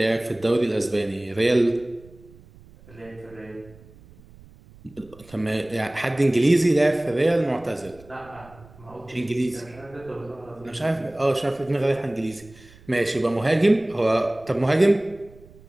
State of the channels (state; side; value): noise; right; rumble, 23 dB below the sound